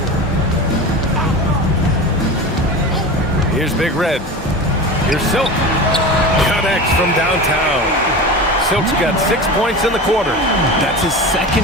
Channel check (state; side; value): normal; both; correlation 0.29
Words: Here's Big Red. Here's Silk. Connects from downtown. Silk's got 6 points in the quarter. That's his second